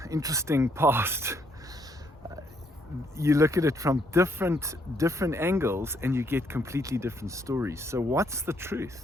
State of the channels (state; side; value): normal; both; correlation 0.71